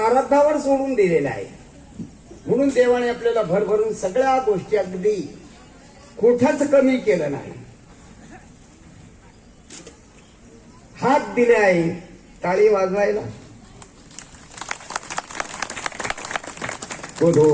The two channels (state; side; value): identical; both; correlation 1.00